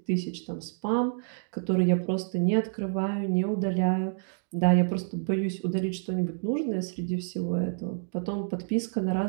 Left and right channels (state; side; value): silent; left; digital silence